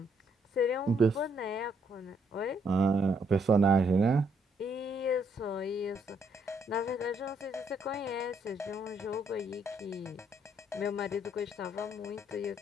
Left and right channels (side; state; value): both; normal; correlation 0.71